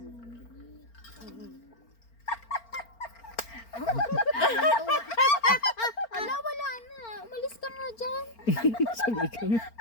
Ala, wala na. Umalis ka nga dyan. Sabi ka.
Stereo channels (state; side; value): late; right; 4.4 ms